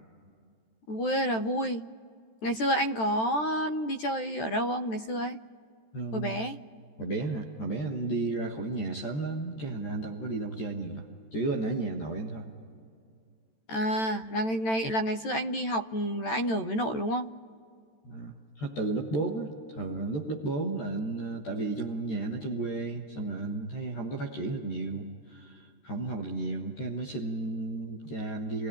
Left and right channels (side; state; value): right; late; 13 ms